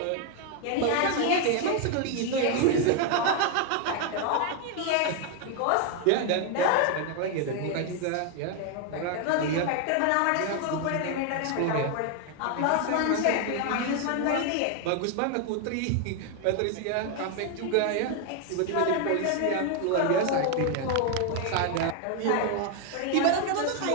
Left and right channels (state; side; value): different; both; correlation 0.01